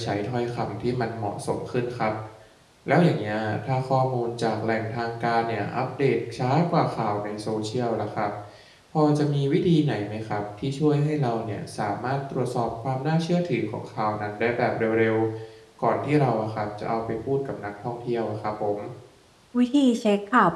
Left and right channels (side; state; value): both; identical; correlation 1.00